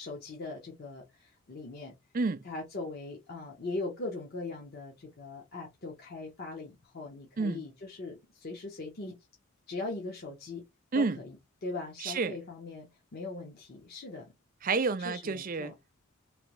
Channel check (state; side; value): normal; both; correlation 0.35